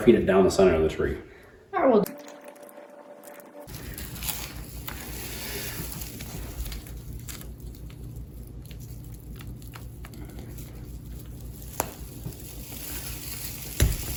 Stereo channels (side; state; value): both; identical; correlation 1.00